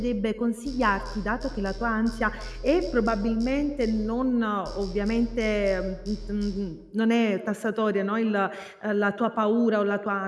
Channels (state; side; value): identical; both; correlation 1.00